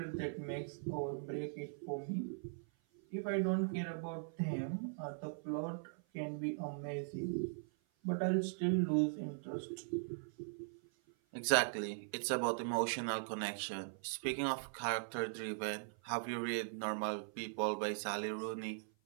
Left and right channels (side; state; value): left; silent; 51 dB below the other